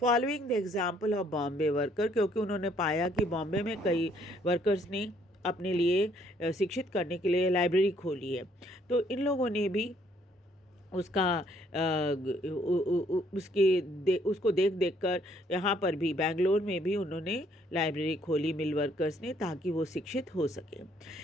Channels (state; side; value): normal; both; correlation 0.66